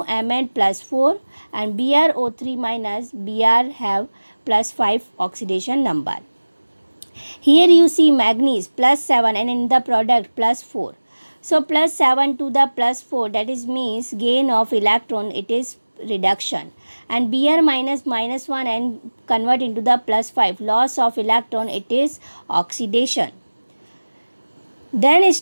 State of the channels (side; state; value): both; inverted; correlation -1.00